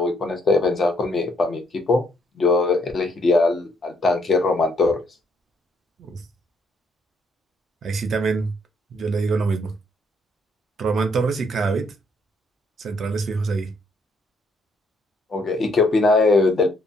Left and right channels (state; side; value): normal; both; correlation 0.70